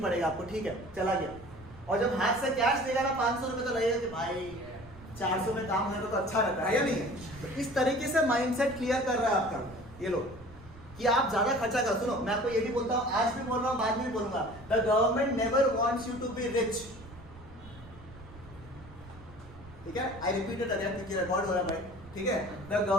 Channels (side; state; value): right; noise; rumble, 19 dB below the sound